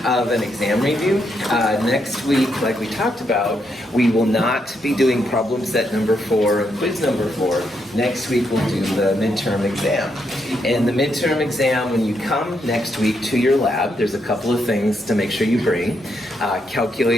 of an exam review. Next week, like we talked about, we will not be doing problem set number 4 and quiz number 4. Next week, we'll do the midterm exam. And the midterm exam, when you come next week to your lab, there's a couple of things to make sure you bring.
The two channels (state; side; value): normal; both; correlation 0.79